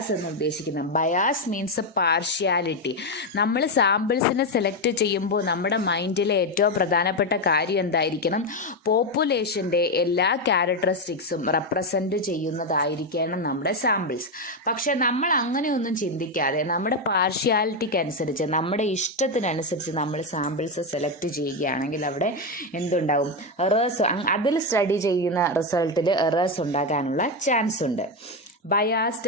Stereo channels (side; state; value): both; normal; correlation 0.08